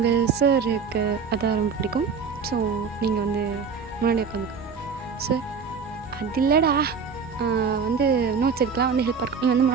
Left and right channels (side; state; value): left; quieter; 5.8 dB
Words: சாருக்கு அதான் ரொம்ப பிடிக்கும். ஸோ நீங்கள் வந்து முன்னாடி உட்காந்துக்கோங்க சார். அது இல்லைடா வந்து நோட்ஸ் எடுக்கலாம் வந்து ஹெல்ப்பாக இருக்கும், நீ வந்து